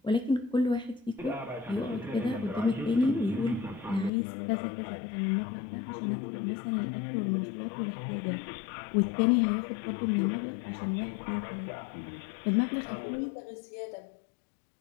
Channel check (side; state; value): right; drops out; at 4.1 s